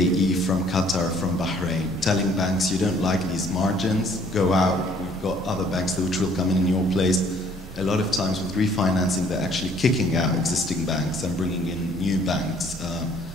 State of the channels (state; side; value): normal; both; correlation 0.60